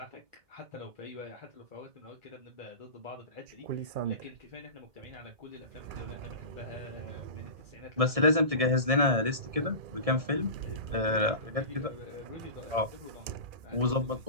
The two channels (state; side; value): late; left; 1.7 ms